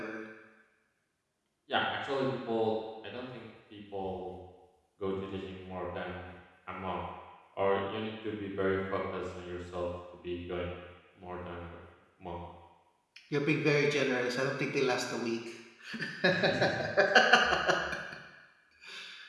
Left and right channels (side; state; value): both; identical; correlation 1.00